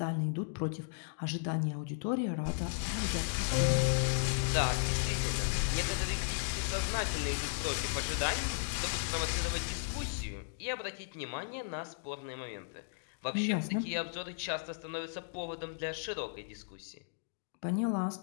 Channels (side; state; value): right; silent; digital silence